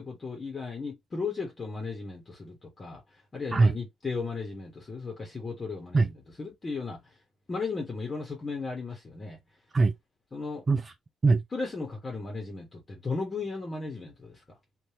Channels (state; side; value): normal; both; correlation 0.89